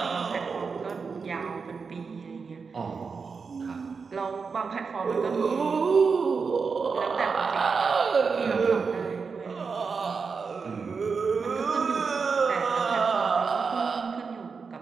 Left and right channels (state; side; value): quieter; left; 5.2 dB